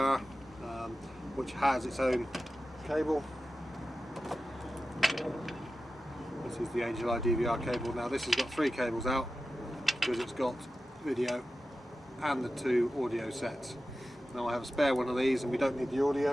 which has its own cable. This is the Xeye DVR cable. Now this has got 3 cables out because it's got video and the 2 audio sets. Now I have a spare one of these and we don't need the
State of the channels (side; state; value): both; normal; correlation 0.93